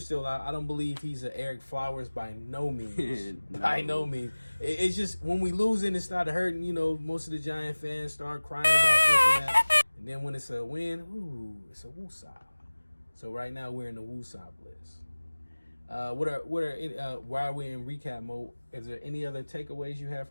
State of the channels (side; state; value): both; inverted; correlation -1.00